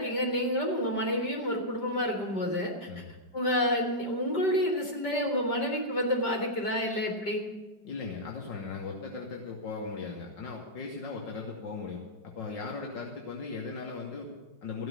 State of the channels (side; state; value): right; late; 5.1 ms